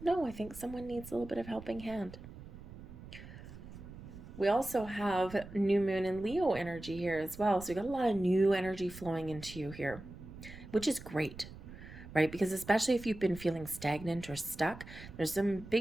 no, I think someone needs a little bit of helping hand. We also have new moon and Leo energy here as well. So we got a lot of new energy flowing into you here, which is great, right? Because especially if you've been feeling stagnant or stuck, there's some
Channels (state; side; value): noise; right; rumble, 15 dB below the sound